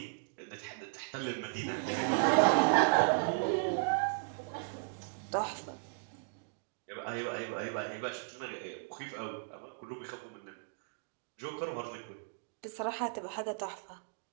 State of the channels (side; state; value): left; silent; digital silence